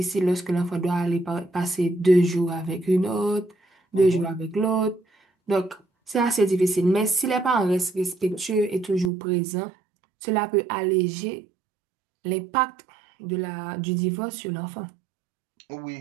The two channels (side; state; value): left; drops out; at 9.1 s